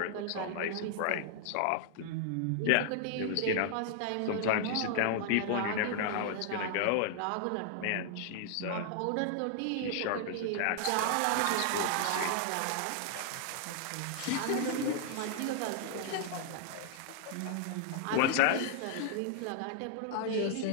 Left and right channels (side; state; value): both; different; correlation -0.01